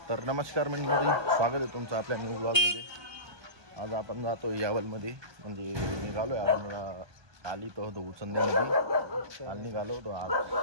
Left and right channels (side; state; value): left; late; 1.2 ms